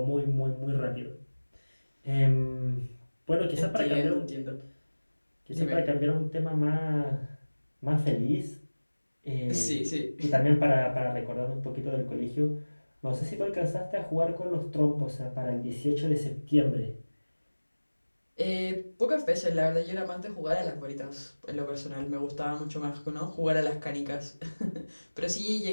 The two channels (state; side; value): inverted; both; correlation -1.00